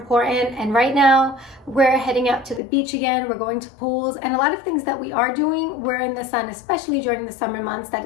And right now we're heading out to the beach again. We're going to pools, and a lot of things that we are doing, we're in the sun, especially during the summer months that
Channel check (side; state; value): right; drops out; at 2.6 s